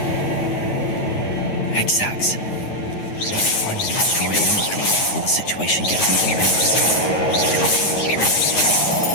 Exact. Find and destroy anything before the situation gets even worse.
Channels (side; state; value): right; late; 9.8 ms